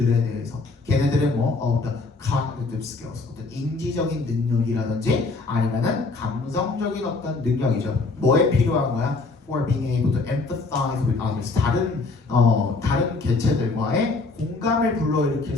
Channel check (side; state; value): right; quieter; 3.7 dB